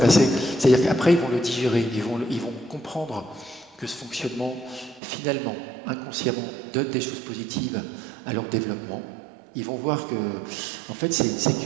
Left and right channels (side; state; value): left; drops out; at 5.0 s